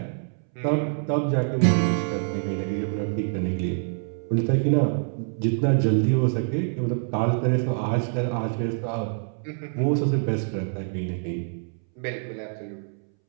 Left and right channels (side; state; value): left; silent; 61 dB below the other